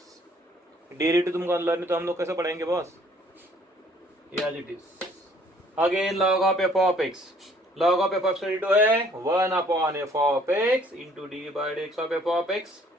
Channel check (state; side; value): normal; both; correlation 0.59